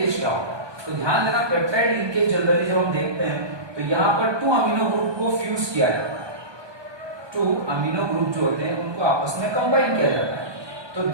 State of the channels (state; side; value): late; left; 1.2 ms